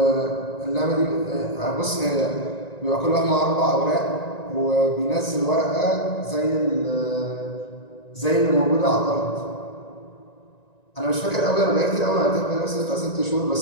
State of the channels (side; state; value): right; late; 1.9 ms